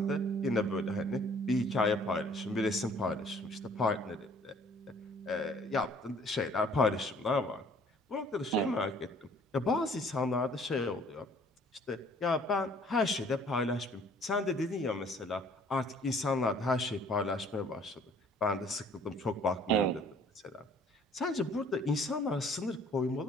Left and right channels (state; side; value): normal; both; correlation 0.57